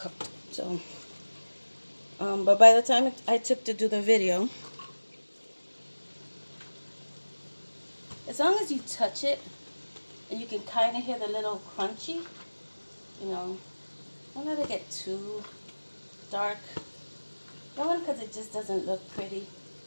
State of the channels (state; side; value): inverted; both; correlation -1.00